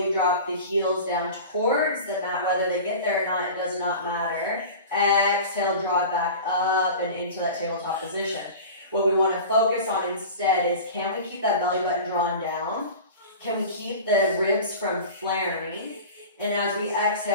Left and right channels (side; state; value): both; inverted; correlation -0.35